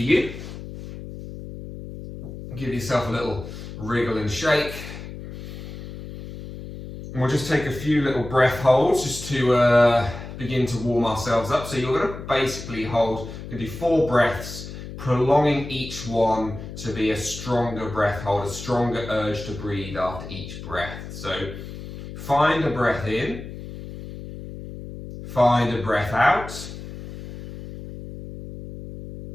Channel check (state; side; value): noise; left; hum, 11 dB below the sound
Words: you. Give yourself a little wriggle and shake. And we'll just take a few little breath holds just to begin to warm ourselves up. So you're going to basically hold, you can do 4 breaths, prolonging each one to be a stronger breath hold, a stronger urge to breathe after each breath. So find a breath in, find a breath out,